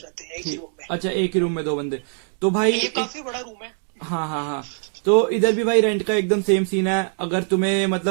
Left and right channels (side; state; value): left; silent; 60 dB below the other